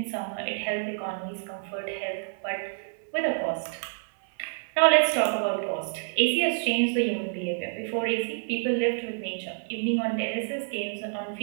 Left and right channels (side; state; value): left; silent; 59 dB below the other